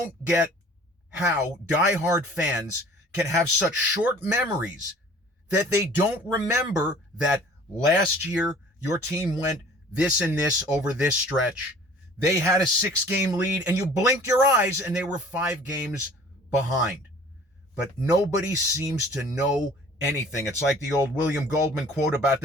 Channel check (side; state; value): both; normal; correlation 0.49